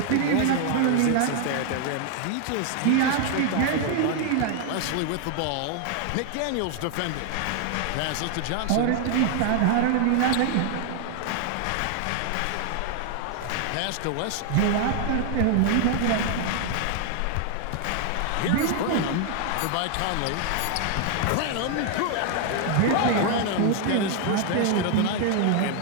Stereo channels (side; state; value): both; different; correlation 0.00